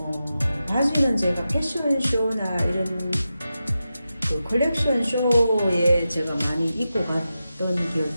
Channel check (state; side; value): inverted; both; correlation -0.91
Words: 바지는 제가 패션쇼나 이런 그 컬렉션 쇼에 제가 많이 입고 갔던 기억이